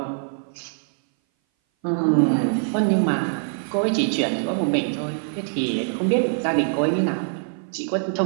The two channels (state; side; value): silent; left; 59 dB below the other